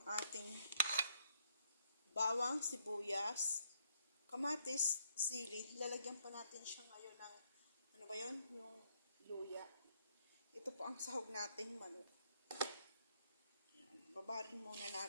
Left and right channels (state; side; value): inverted; both; correlation -0.72